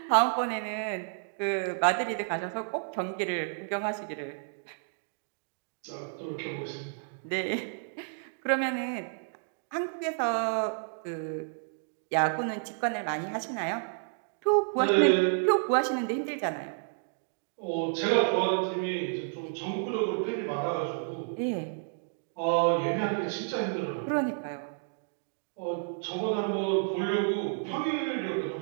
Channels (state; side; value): silent; left; digital silence